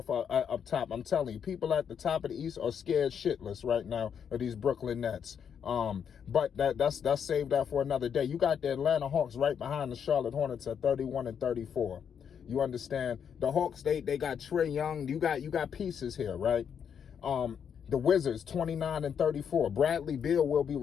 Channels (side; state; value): right; quieter; 7.7 dB